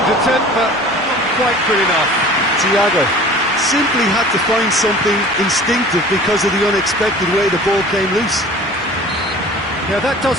attempt, but not quite good enough. Thiago simply had to find something instinctive because of the unexpected way the ball came loose. Yeah, that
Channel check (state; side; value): normal; both; correlation 0.43